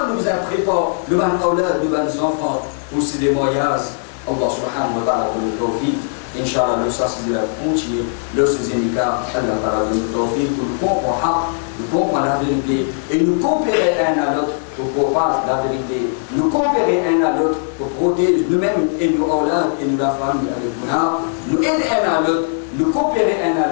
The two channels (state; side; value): silent; right; 66 dB below the other